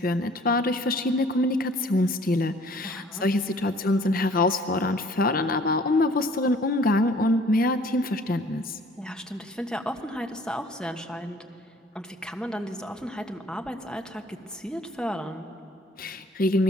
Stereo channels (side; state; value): both; normal; correlation 0.54